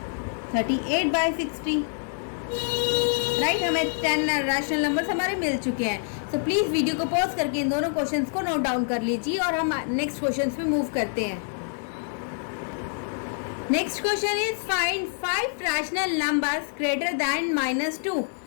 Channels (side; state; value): right; silent; digital silence